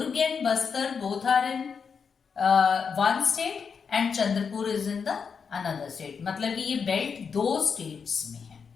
and Bastar both are in one state and Chandrapur is in the another state. मतलब कि ये बेल्ट दो स्टेट्स में है.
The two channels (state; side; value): quieter; right; 6.0 dB